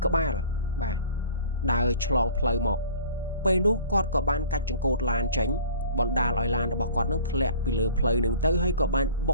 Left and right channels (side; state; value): both; inverted; correlation -0.45